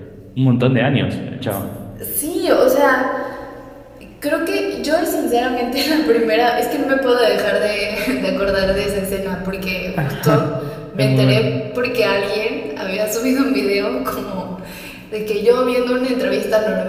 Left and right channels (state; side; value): identical; both; correlation 1.00